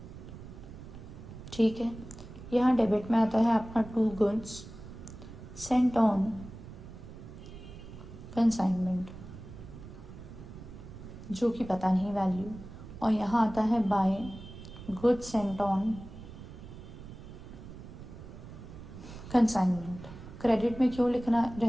ठीक है, यहाँ डेबिट में आता है आपका 2 गुड्स सेंट ऑन कंसाइनमेंट, जो कि पता नहीं वैल्यू, और यहाँ आता है by goods sent on consignment. Credit में क्यों लिखना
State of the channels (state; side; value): noise; right; rumble, 14 dB below the sound